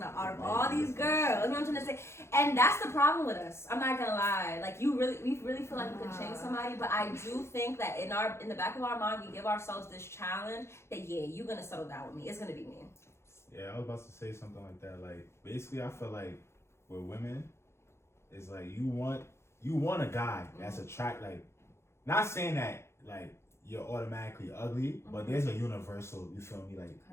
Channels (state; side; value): late; right; 0.13 ms